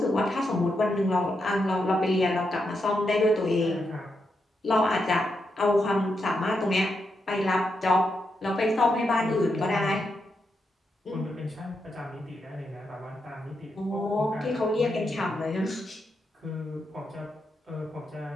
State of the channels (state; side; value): normal; both; correlation 0.83